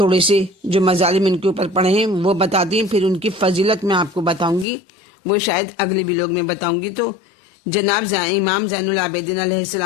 سے جو مظالم ان کے اوپر پڑے ہیں وہ بتا دیں، پھر ان کی فضیلت میں آپ کو بتاؤں گی، وہ شاید اگلے ویلاگ میں بتاؤں گی۔ تو جناب امام زین العابدین علیہ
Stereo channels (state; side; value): drops out; right; at 4.7 s